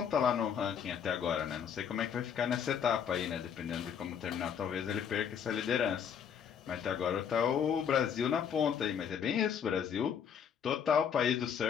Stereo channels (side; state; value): right; quieter; 7.8 dB